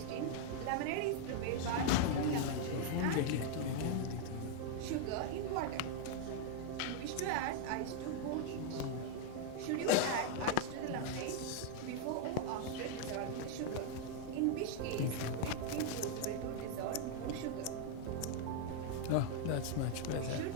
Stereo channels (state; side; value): different; both; correlation 0.00